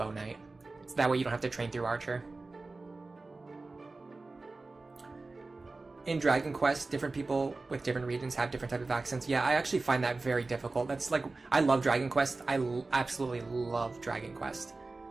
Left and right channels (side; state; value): left; quieter; 3.5 dB